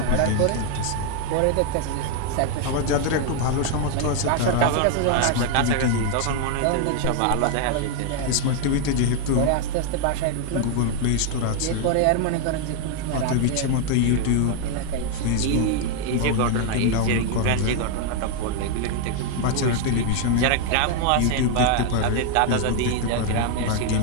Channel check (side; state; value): both; different; correlation 0.00